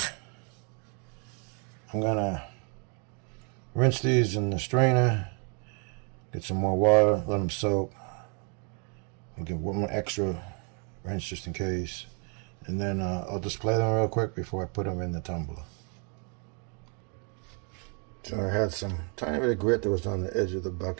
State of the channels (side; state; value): left; quieter; 38.1 dB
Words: I'm gonna rinse these in the strainer, get some more water, let them soak, and get one more extra rinse just in case, and then I'll display them real quick before I put them in the tumbler. So I had some tiny bit of grit that was on the edge of the